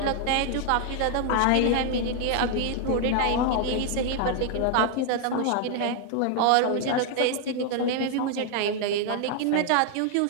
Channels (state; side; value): different; both; correlation 0.00